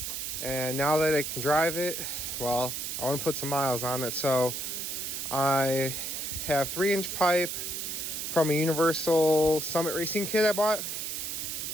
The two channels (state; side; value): noise; right; hiss, 4 dB below the sound